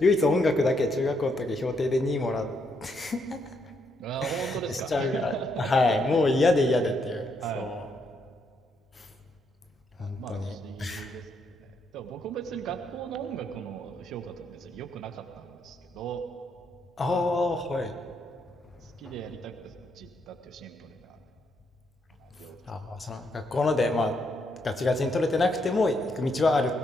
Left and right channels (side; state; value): both; normal; correlation 0.76